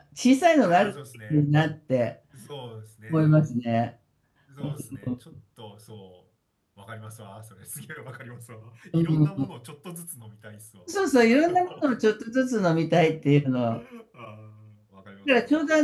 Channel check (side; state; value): both; identical; correlation 1.00